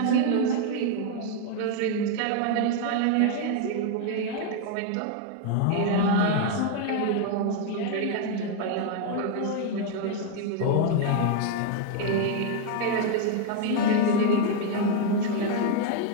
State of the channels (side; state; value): both; different; correlation 0.00